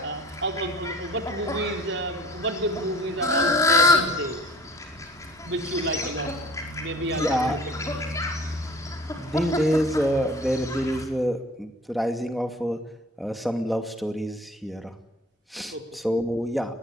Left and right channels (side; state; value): both; normal; correlation 0.48